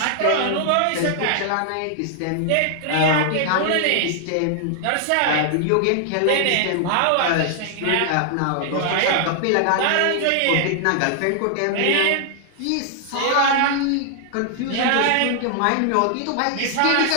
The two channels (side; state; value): both; different; correlation 0.00